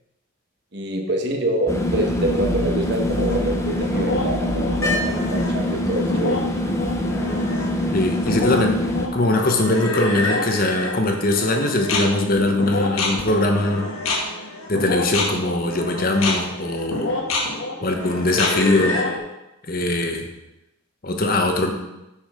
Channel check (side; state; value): both; normal; correlation 0.38